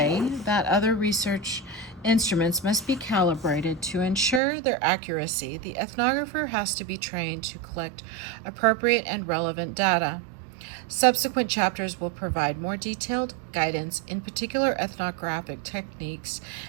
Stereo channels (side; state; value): left; drops out; at 4.4 s